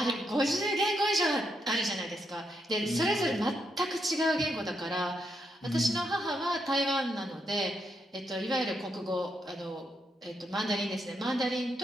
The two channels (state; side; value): normal; both; correlation 0.80